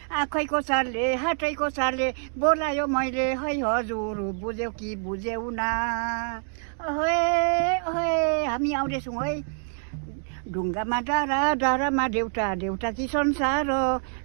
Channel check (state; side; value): silent; left; 58 dB below the other